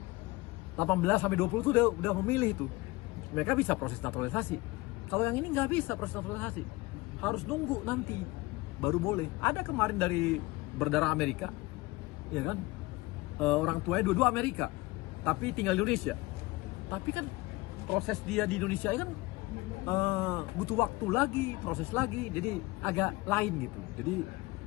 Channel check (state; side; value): quieter; right; 21.8 dB